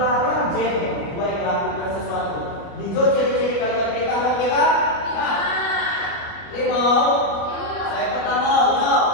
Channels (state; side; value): late; right; 29 ms